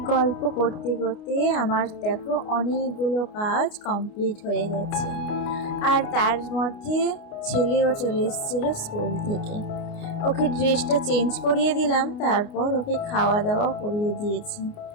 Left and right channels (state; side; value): late; right; 29 ms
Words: গল্প করতে করতে আমার দেখো অনেকগুলো কাজ কমপ্লিট হয়ে গেছে। আর তার মধ্যে ছেলেও চলে এসেছিল স্কুল থেকে, ওকে ড্রেসটা চেঞ্জ করিয়ে দিলাম, তারপর ওকে খাওয়া দাওয়া করিয়ে দিয়েছি।